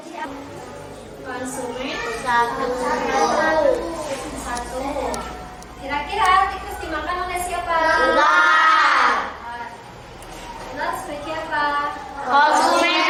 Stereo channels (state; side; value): identical; both; correlation 1.00